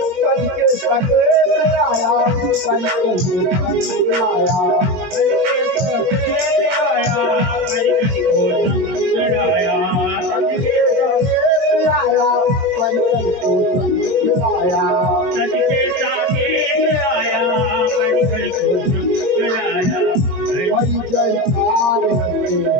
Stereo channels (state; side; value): late; left; 21 ms